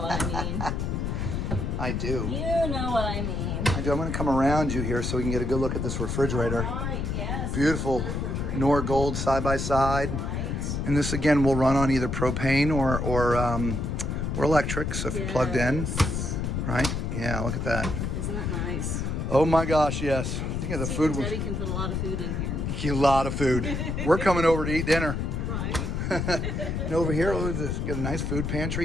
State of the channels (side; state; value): left; noise; rumble, 1 dB below the sound